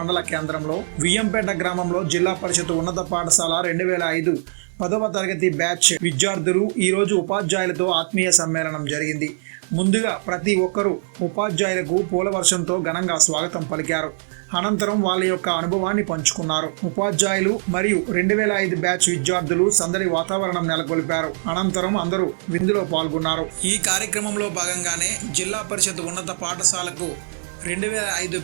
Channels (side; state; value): left; silent; 64 dB below the other